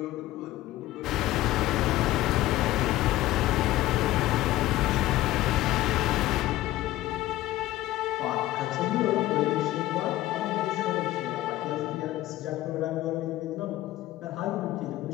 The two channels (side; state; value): right; quieter; 15.9 dB